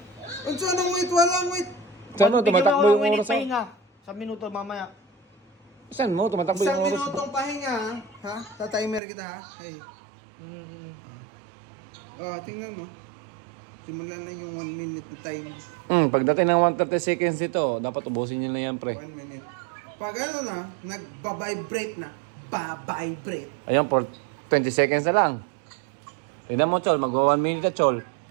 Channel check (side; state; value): left; drops out; at 9.0 s